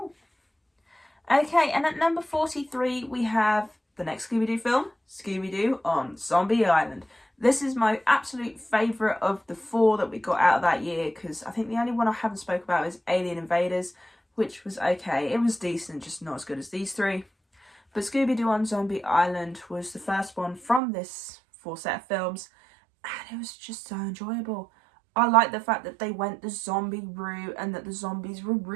Okay, and at number 43, we have the next Scooby-Doo film, Scooby-Doo on Zombie Island. This is my absolute favourite of the 4 that we got out of that year, because I think the only one I haven't spoke about is Alien Invaders, which was okay. It was decent, just not as good as these 3. But Scooby-Doo on Zombie Island was the first one from this 4 set of films, and it was just so enjoyable. I like the fact that they went the zombie route and that the zombies were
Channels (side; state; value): left; drops out; at 20.8 s